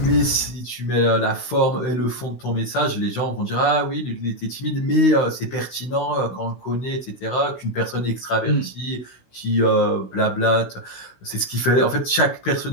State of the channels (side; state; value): right; late; 16 ms